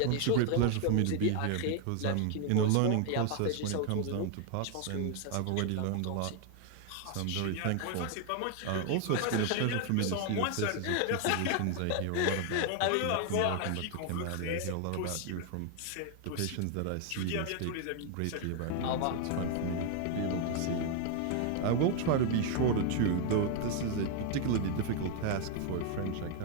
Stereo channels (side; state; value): both; different; correlation 0.00